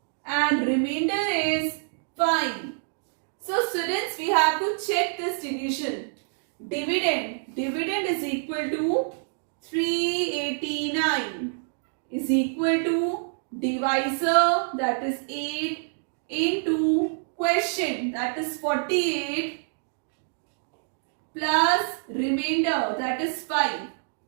and remainder is 5. So students, we have to check this division. Dividend is equal to 389 is equal to divisor, that is 8, into quotient, that is 48, plus remainder, that is 5.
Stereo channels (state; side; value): silent; left; digital silence